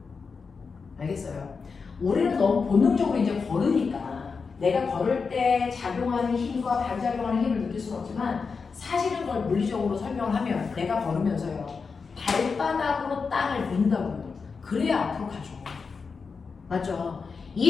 알겠어요? 우리는 너무 본능적으로 이제 걸으니까 내가 걸을 때 작용하는 힘과 반작용하는 힘을 느낄 수는 없지만 사실은 그걸 물리적으로 설명을 하면 내가 걸으면서요. 발바닥으로 땅을 민다고요. 그래야 앞으로 가죠. 맞죠?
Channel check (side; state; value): right; quieter; 5.1 dB